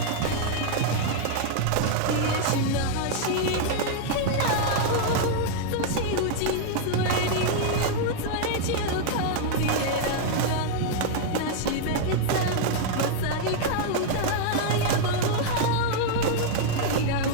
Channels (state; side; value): different; both; correlation 0.00